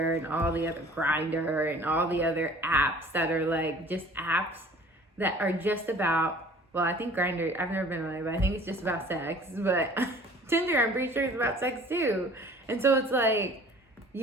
and all the other Grindr and all the other apps that are like just apps that are just about, well, I think Grindr, I've never been on it, but I think it's just about sex. But Tinder, I'm pretty sure it's about sex too. And so it's like,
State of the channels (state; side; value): normal; both; correlation 0.49